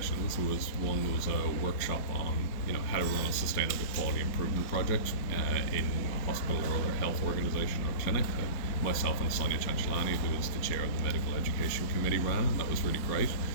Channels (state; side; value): late; right; 4.5 ms